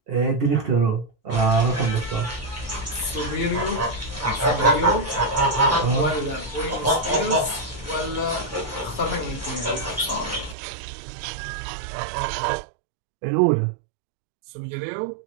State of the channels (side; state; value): left; drops out; at 10.6 s